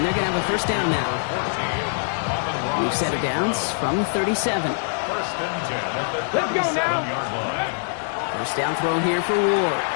they're going to have a first down now. New set of downs from the 37. Let's go now. First down throw here for Ward.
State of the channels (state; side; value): silent; right; digital silence